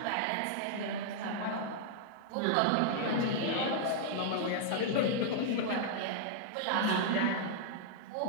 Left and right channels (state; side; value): different; both; correlation -0.01